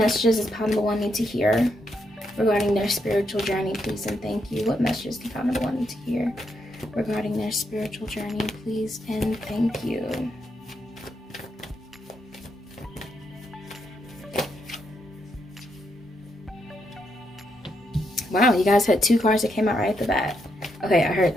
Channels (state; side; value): normal; both; correlation 0.79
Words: does pile number 1 need to hear regarding their spiritual journey, please and thank you? What messages do pile number 1 need to hear regarding their spiritual journey, please and thank you? Wow, you guys had 2 cards that came out right at the bat. Okay, I heard